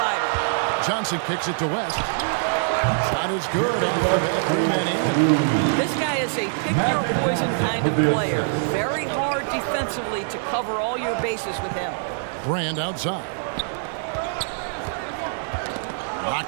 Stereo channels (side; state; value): left; silent; 63 dB below the other